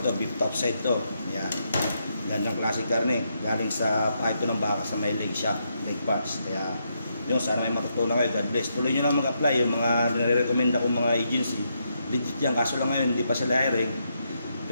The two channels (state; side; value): inverted; both; correlation -0.80